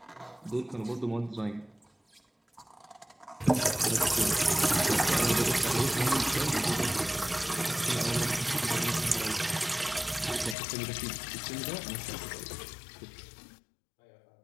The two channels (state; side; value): drops out; right; at 10.6 s